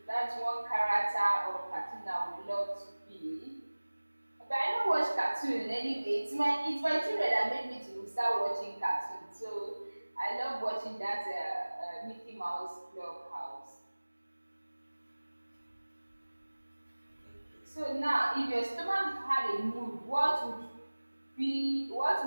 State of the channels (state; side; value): inverted; both; correlation -1.00